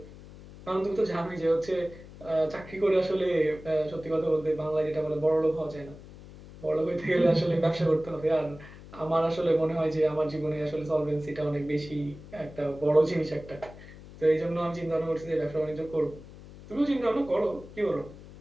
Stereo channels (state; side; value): noise; left; hum, 17 dB below the sound